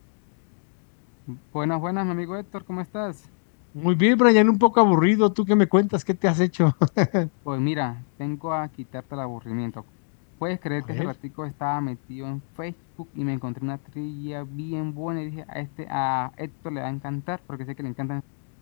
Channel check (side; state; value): right; silent; 61 dB below the other